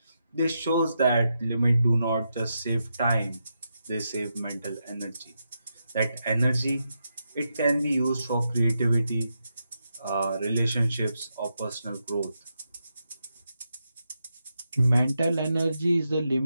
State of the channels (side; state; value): both; inverted; correlation -0.85